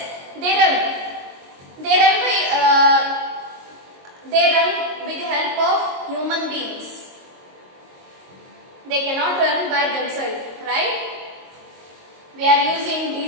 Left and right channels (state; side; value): late; left; 22 ms